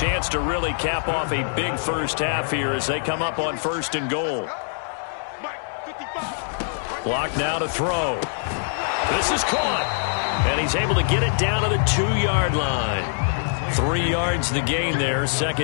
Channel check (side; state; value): right; silent; digital silence